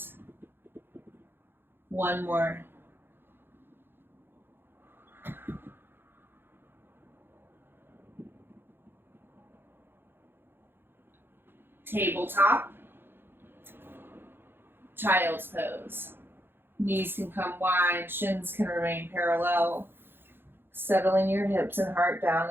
One more. Tabletop. Child's pose. Knees can come wide, shins can remain parallel. Settling your hips and heart down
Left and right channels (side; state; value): left; late; 0.10 ms